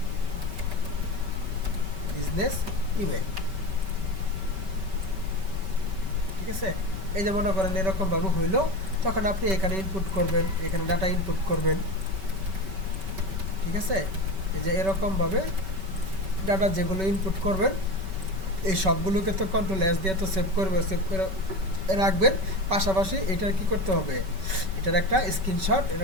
বিজনেস, ইমেল, ঠিক আছে? এই যে মনে করেন এরকম ভাবে হইলো, তখন আপনি এখানে ইনপুট করবেন, এখানে ডাটা ইনপুট করবেন, ঠিক আছে? এই যে এরকম ভাবে ডাটা যেগুলো ইনপুট করবেন এই সবগুলোকে তো কন্ট্রোল এস দিয়ে তো সেভ করবে, সেভ করে রাখবেন। পাশাপাশি এটার কি করতে হবে, এটার একটা স্ক্রিনশট,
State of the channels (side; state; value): left; late; 5.2 ms